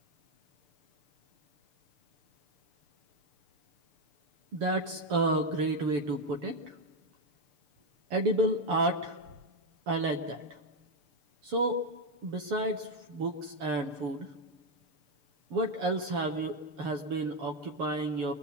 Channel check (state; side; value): late; left; 6.8 ms